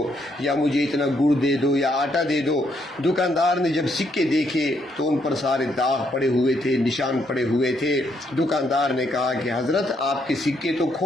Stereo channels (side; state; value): both; normal; correlation 0.74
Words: یا مجھے اتنا گڑ دے دو، یا آٹا دے دو. دکاندار نے جب سکے دیکھے تو ان پر سارے داغ پڑے ہوئے تھے، نشان پڑے ہوئے تھے. دکاندار نے کہا کہ حضرت آپ کے سکے تو